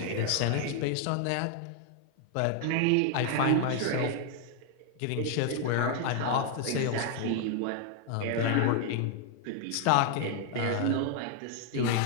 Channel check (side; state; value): both; different; correlation 0.00